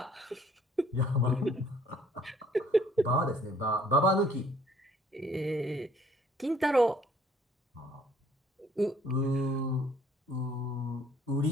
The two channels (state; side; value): normal; both; correlation 0.59